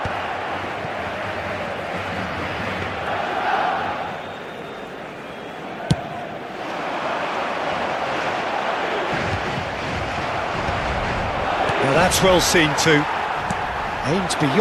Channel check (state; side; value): identical; both; correlation 1.00